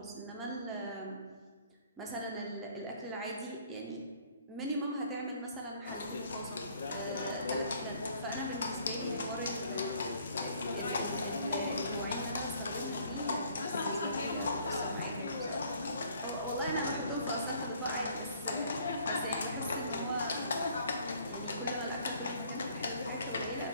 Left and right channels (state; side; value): inverted; both; correlation -0.59